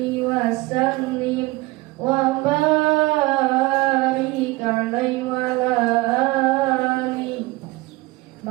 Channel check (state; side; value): quieter; left; 21.3 dB